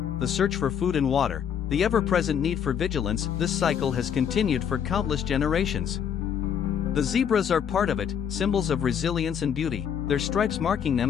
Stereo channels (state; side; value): quieter; right; 8.2 dB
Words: the search for food and water, the ever-present need for vigilance, this cycle has continued for countless generations. The zebras are part of it, symbols of resilience and beauty, their stripes marking